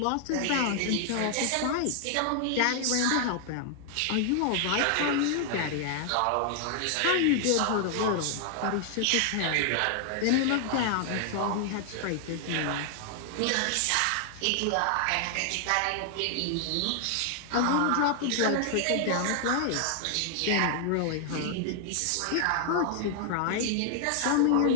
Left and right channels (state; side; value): different; both; correlation 0.00